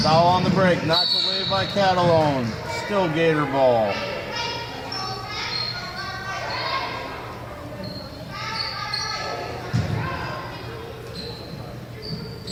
Dowell on the break. Knocked away by Catalone. Still Gator ball.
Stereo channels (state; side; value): identical; both; correlation 1.00